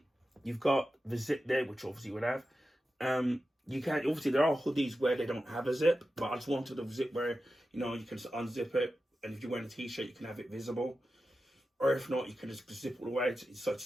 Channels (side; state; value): both; normal; correlation 0.92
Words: You've got the zip there, which obviously you would have. You can obviously there are hoodies where they don't have a zip, but I just wanted a zip where you can just unzip it, and if you're wearing a t-shirt, you can have it visible, or if not, you can just zip it away.